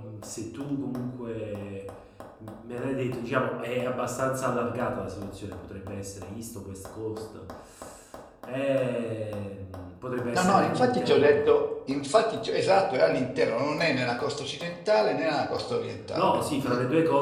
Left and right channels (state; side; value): identical; both; correlation 1.00